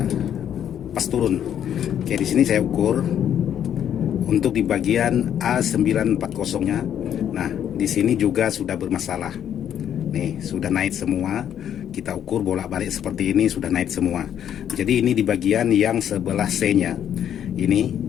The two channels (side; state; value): right; quieter; 9.7 dB